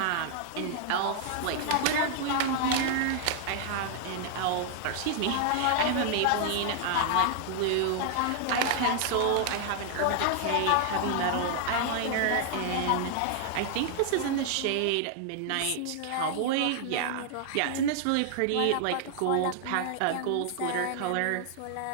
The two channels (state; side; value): different; both; correlation -0.01